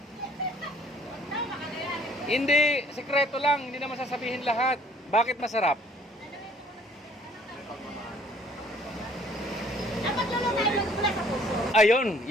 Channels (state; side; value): normal; both; correlation 0.58